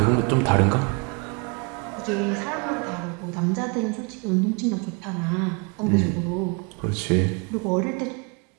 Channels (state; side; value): quieter; left; 32.3 dB